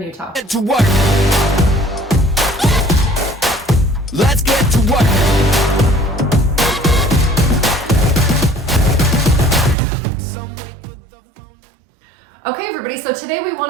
Utah. Get to work. Let's get to work. Okay everybody, so today we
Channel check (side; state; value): left; drops out; at 9.8 s